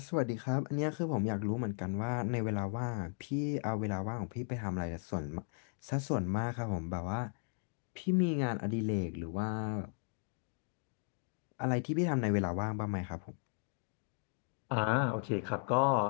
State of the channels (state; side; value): silent; right; digital silence